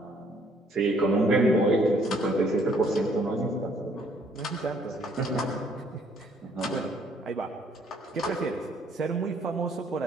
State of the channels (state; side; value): normal; both; correlation 0.64